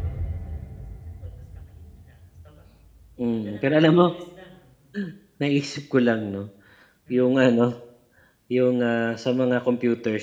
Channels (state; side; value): identical; both; correlation 1.00